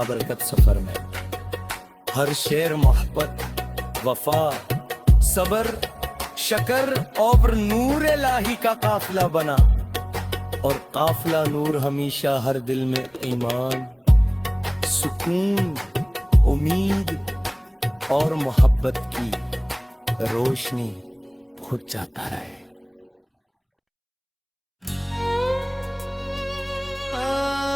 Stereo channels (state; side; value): identical; both; correlation 1.00